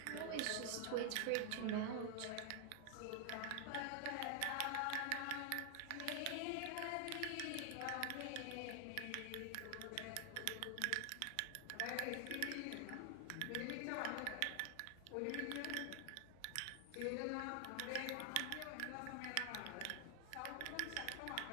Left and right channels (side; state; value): both; different; correlation 0.00